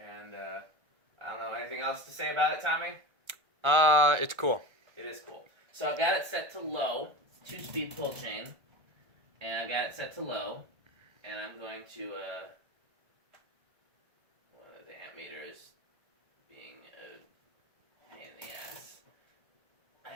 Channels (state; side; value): late; left; 1.3 ms